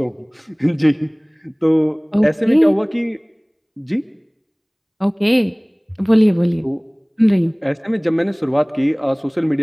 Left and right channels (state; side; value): identical; both; correlation 1.00